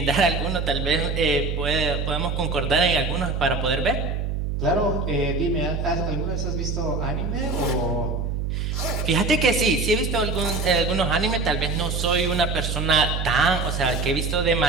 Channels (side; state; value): right; noise; hum, 2 dB below the sound